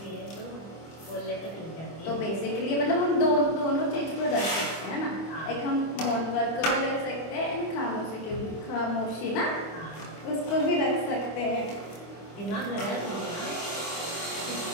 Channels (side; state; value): right; late; 25 ms